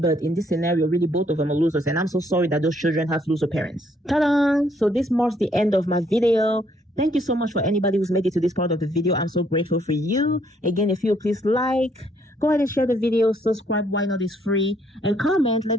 in this scenario, really, both of them are losers. And I'm so sorry that those children have loser parents. Ta-da! So this marks the end of my video. Thank you so much for anybody who's made it to this part of the video. I'm so grateful for you. Again, if you please like, go ahead and share the video, subscribe, why not, is free, and comment,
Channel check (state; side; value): normal; both; correlation 0.68